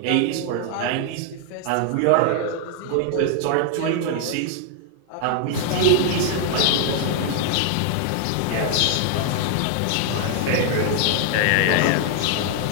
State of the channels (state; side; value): different; both; correlation 0.00